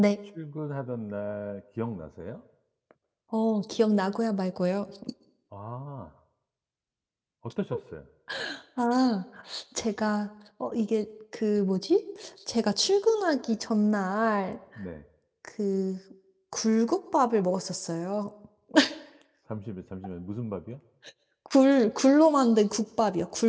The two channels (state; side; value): identical; both; correlation 1.00